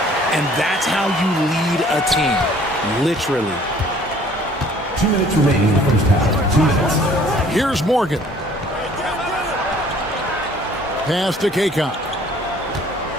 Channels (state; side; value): normal; both; correlation 0.55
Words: And that's how you lead a team. Literally. 2 minutes remaining in the first half. 2 minutes. Here's Morgan. Pass to Kaycock.